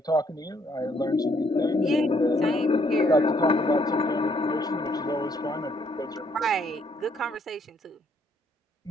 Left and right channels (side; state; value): both; normal; correlation 0.68